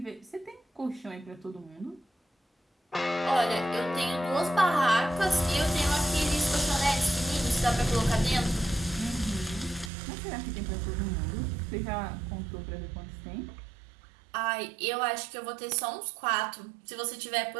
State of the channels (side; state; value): left; drops out; at 9.9 s